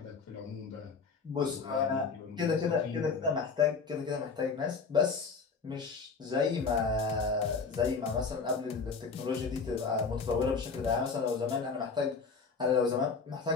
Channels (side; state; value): right; quieter; 5.0 dB